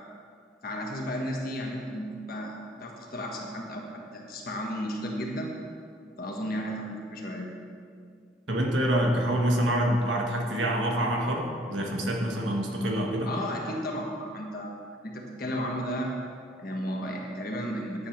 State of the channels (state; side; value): normal; both; correlation 0.59